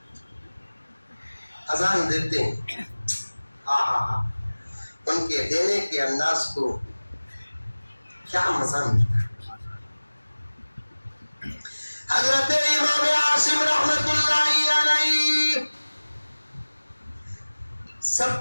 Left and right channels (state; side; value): inverted; both; correlation -1.00